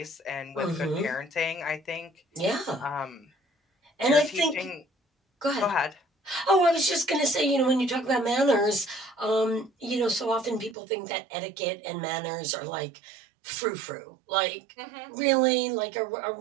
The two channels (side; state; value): left; drops out; at 10.8 s